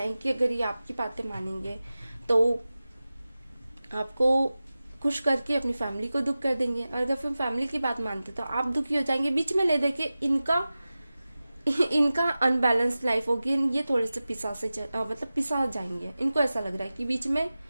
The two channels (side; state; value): both; inverted; correlation -0.96